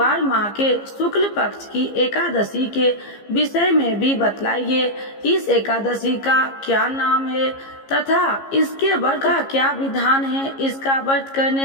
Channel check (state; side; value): late; right; 15 ms